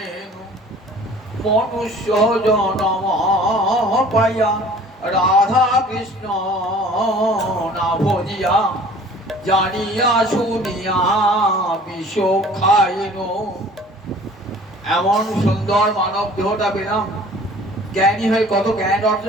মনুষ্য জনম পাইয়া রাধা কৃষ্ণ না ভজিয়া, জানিয়া শুনিয়া বিষ খাইনু। এমন সুন্দর মানব দেহটা পেলাম, জ্ঞানী হয়ে কত জ্ঞান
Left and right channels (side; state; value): both; normal; correlation 0.48